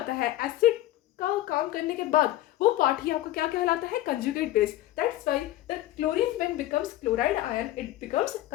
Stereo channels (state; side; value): quieter; right; 15.1 dB